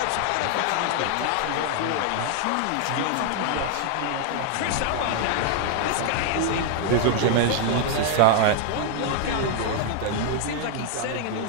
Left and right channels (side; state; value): both; different; correlation 0.00